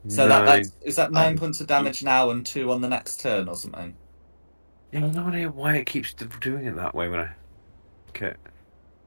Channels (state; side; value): inverted; both; correlation -1.00